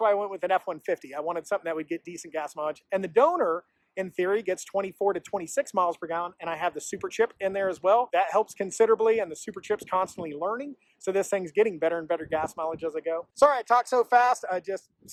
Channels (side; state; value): both; identical; correlation 1.00